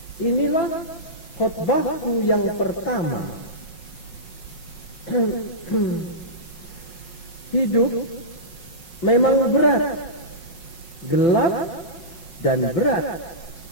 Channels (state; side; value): late; right; 5.5 ms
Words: Inilah khotbahku yang pertama. Hidup memang berat, gelap dan berat.